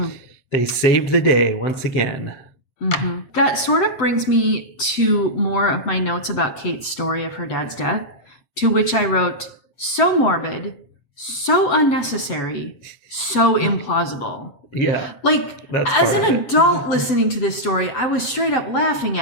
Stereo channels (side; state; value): right; late; 7.9 ms